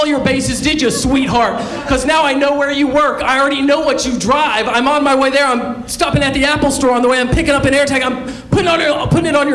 your bases, did you, sweetheart? Because now I know where you work. I already know what you drive. I'm on my way there. I'm stopping at the Apple store on the way. I'm picking up an AirTag. I'm putting it on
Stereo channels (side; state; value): both; identical; correlation 1.00